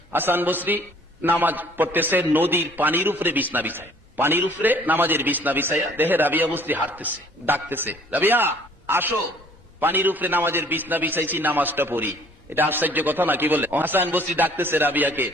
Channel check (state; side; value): normal; both; correlation 0.56